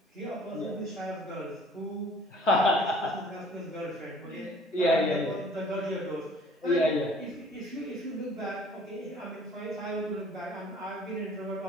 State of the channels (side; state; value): both; normal; correlation 0.53